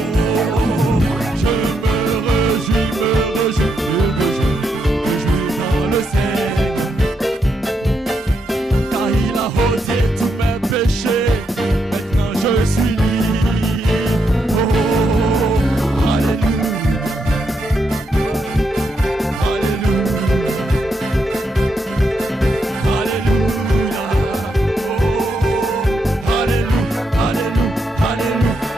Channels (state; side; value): normal; both; correlation 0.80